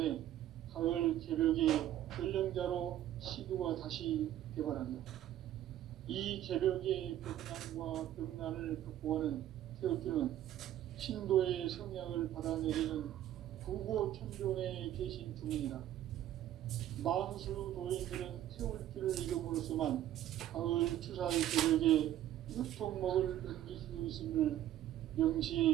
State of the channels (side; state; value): left; quieter; 12.4 dB